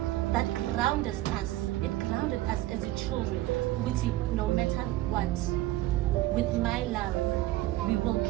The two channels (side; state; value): left; quieter; 16.3 dB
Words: That grounded us. It grounded us as your children. Which no matter what, with my love, we will